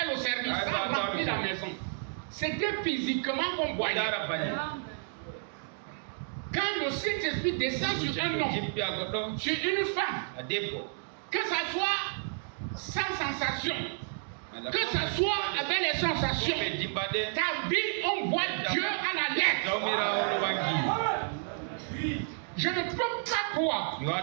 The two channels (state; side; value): silent; left; 57 dB below the other